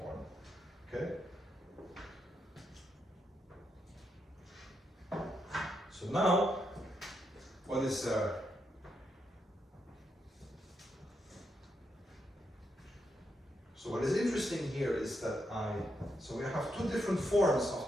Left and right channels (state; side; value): normal; both; correlation 0.81